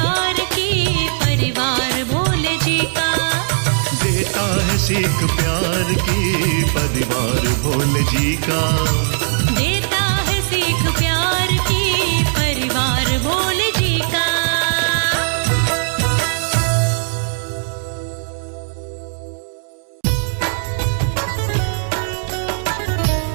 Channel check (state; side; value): silent; left; digital silence